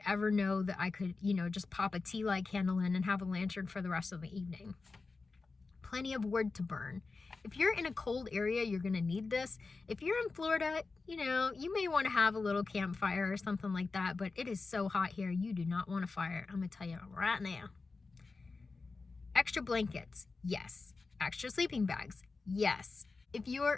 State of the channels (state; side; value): quieter; right; 4.0 dB